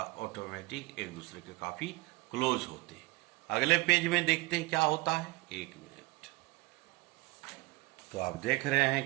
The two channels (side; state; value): left; quieter; 23.0 dB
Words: ऑटोमेटिक एक दूसरे के काफी क्लोज होते हैं। अगले पेज में देखते हैं क्या होता है। एक मिनट। तो आप देख रहे हैं